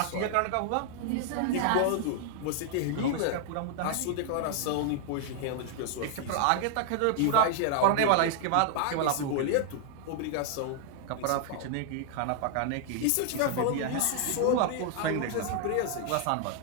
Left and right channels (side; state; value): both; different; correlation 0.00